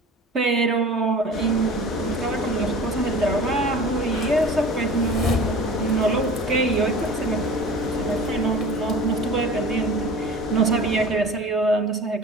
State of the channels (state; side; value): normal; both; correlation 0.40